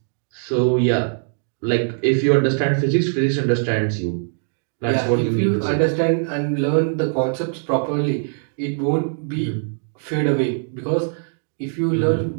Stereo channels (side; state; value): left; silent; digital silence